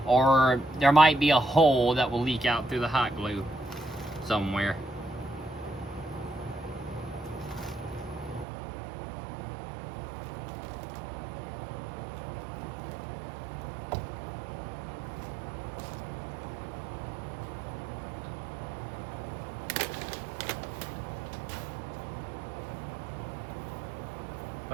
or there might be a hole that will leak out through the hot glue somewhere.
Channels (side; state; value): left; drops out; at 8.5 s